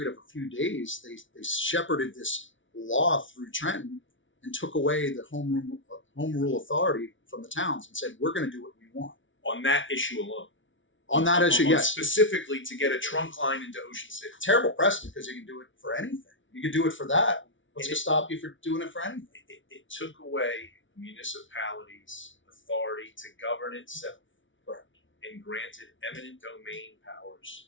of a few days, they shepherded this law through Trenton and took away the home rule authority from the towns and said, we're going to do what we want. On that issue alone. On that issue, yes. Specifically to get a trunk line into Ocean City. Terrible precedent because you can do it for anything. You can do it for that. What's to stop you from doing it for anything? It took away municipalities' authority to govern itself. Correct. And granted eminent domain powers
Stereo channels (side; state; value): right; late; 0.56 ms